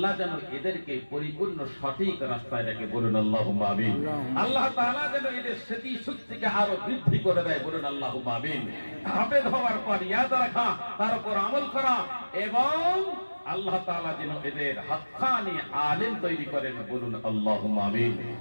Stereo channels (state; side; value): inverted; both; correlation -1.00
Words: যেন এদেরকে পরিপূর্ণ সঠিক রাস্তায় রেখে। বলুন আল্লাহুম্মা আমিন। আল্লাহ তাআলা যেন এদের স্মৃতি শক্তিকে আরো বৃদ্ধি করে দেয়। বলুন আল্লাহুম্মা আমিন। হাফেজ হওয়ার পর ইয়াদ রাখা, তার উপর আমল করা, এবং আল্লাহ তাআলা যেন এদের হাক্কানি আলেম তৈরি করেন। বলুন আল্লাহুম্মা আমিন।